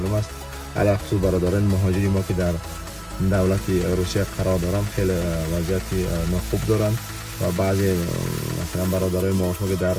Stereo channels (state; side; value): identical; both; correlation 1.00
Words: است. علاوه خصوص برادران مهاجری ما که در دولت روسیه قرار دارن خیلی وضعیت ناخوب دارن و بعضی مثلا برادرای ما که در